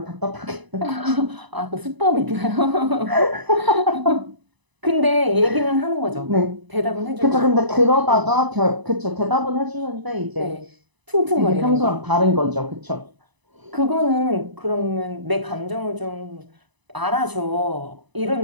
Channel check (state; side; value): late; left; 1.0 ms